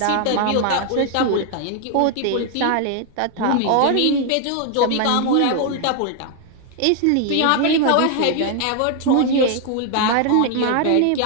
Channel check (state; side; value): different; both; correlation 0.00